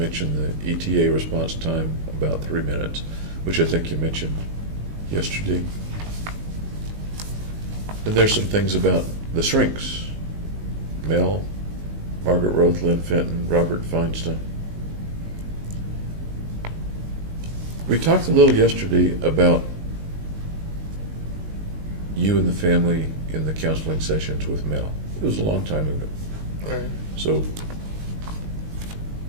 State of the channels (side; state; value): left; late; 19 ms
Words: the ETA response time, about 3 minutes, which I think you mentioned yesterday. And there's some things about the shrinks. Mel, Margaret Roth, Lynn Fenton, Robert Feinstein. We talked a little yesterday about you and the family in the counseling sessions with Mel. It was a long time ago. Right. So